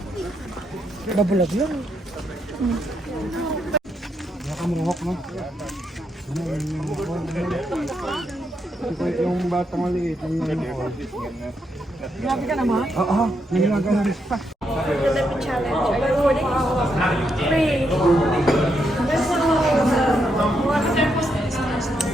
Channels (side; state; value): both; normal; correlation 0.80